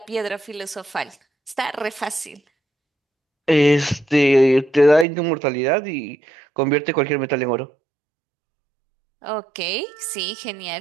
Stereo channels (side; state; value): left; drops out; at 5.1 s